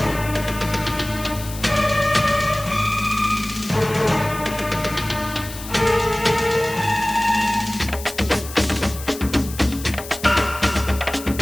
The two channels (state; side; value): noise; left; hiss, 13 dB below the sound